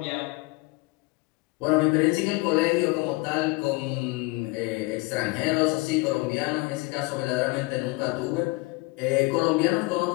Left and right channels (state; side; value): quieter; right; 24.4 dB